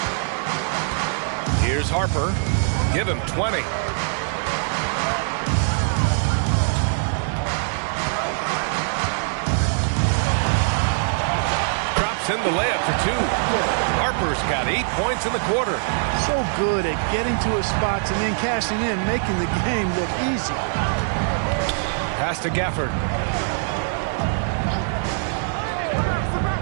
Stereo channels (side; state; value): left; silent; 64 dB below the other